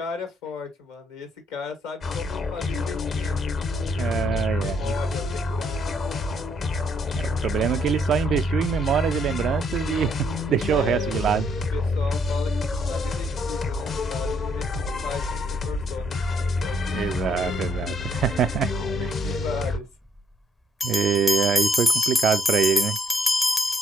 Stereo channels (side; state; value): both; normal; correlation 0.71